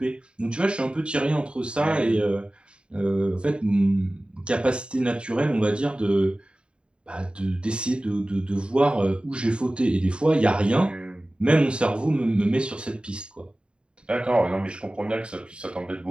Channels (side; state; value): left; late; 0.053 ms